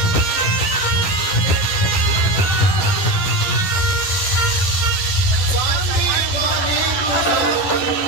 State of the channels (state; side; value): late; right; 11 ms